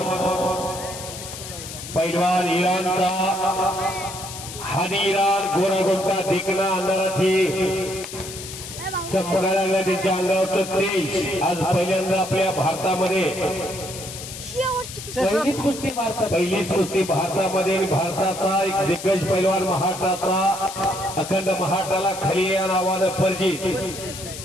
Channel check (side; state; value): left; noise; hiss, 11 dB below the sound